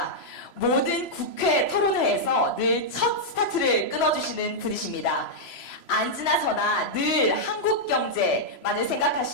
모든 국회 토론회에서 늘 첫 스타트를 끊어주시는 분이십니다. 앉으나 서나 늘 한국 경제만을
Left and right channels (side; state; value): right; late; 3.0 ms